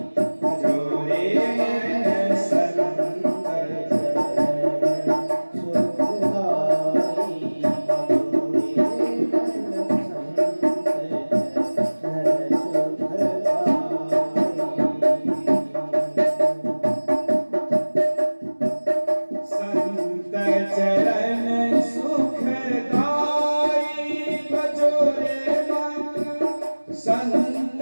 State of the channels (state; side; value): inverted; both; correlation -1.00